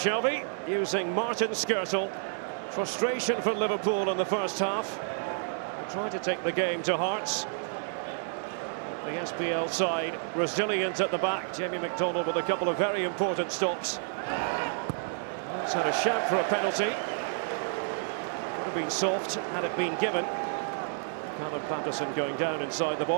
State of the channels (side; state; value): left; silent; 58 dB below the other